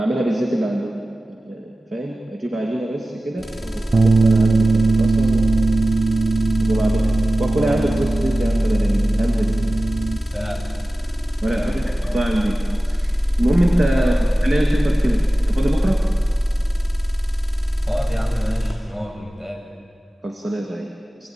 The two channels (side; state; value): both; normal; correlation 0.96